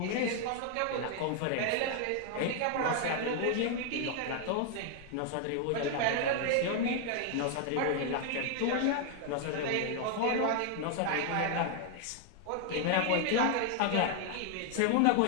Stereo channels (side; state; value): both; different; correlation 0.00